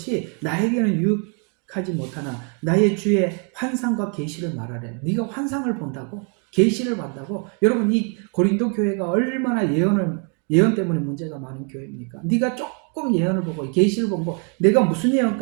나에게는 유익하지 못하나 나의 주의 환상과 계시를 말하래. 네가 환상을 본다고? 계시를 본다고? 여러분, 이 고린도 교회가 얼마나 예언 때문에 문제가 많은 교회입니까? 네가 조금 예언을 보고 계시를 보고, 내가 무슨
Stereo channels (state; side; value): quieter; left; 38.5 dB